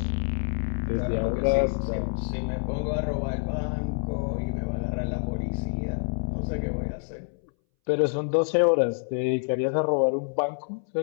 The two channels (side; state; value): right; silent; 60 dB below the other